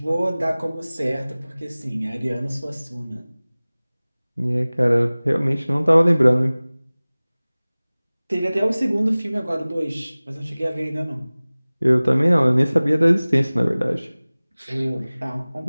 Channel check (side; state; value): both; inverted; correlation -0.99